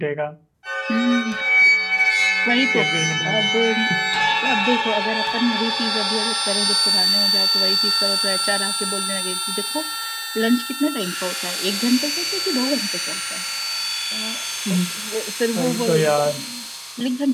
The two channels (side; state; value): both; identical; correlation 1.00